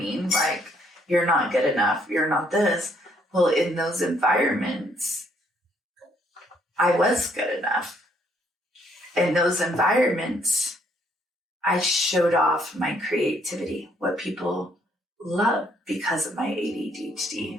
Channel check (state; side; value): normal; both; correlation 0.68